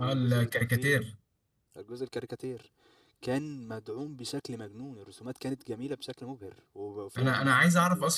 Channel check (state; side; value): identical; both; correlation 1.00